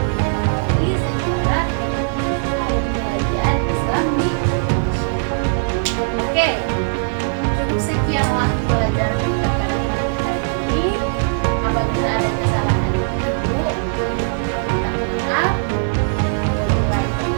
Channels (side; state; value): left; silent; digital silence